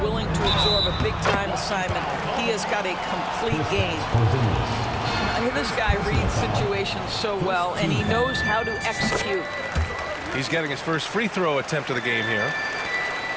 willing to absorb a big-time assignment. He has got a complete game. This guy reads situations so well, and he knows how to execute. He's getting his first free throw attempt of the game here.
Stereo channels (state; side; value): identical; both; correlation 1.00